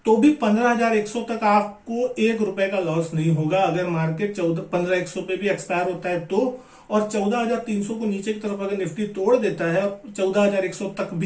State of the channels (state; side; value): identical; both; correlation 1.00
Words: तो भी 15,100 तक आपको ₹1 का लॉस नहीं होगा। अगर मार्केट 15,100 पे भी एक्सपायर होता है तो, और 14,300 को नीचे की तरफ अगर निफ्टी तोड़ देता है और 14,100 तक